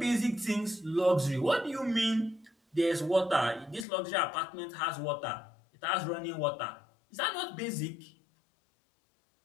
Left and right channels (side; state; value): right; drops out; at 3.9 s